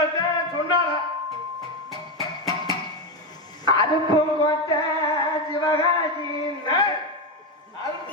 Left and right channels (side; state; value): both; normal; correlation 0.11